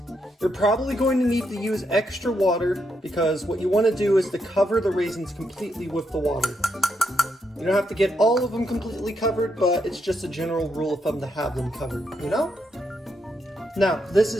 You're probably going to need to use extra water because what you want to do is to cover the raisins completely with the water. You don't have to get all of them completely covered, but it's just a general rule of thumb to have them covered, you know? Now, this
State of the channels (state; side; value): normal; both; correlation 0.79